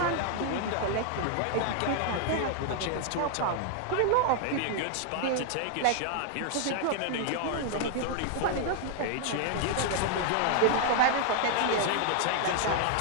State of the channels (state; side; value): different; both; correlation 0.00